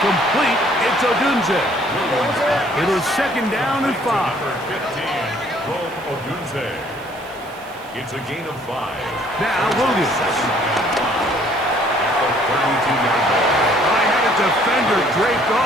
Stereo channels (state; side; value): noise; right; hiss, 26 dB below the sound